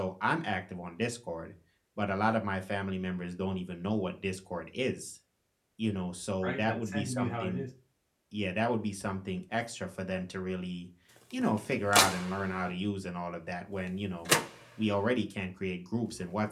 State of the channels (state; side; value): identical; both; correlation 1.00